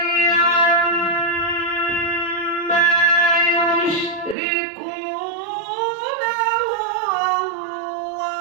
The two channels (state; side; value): drops out; left; at 4.4 s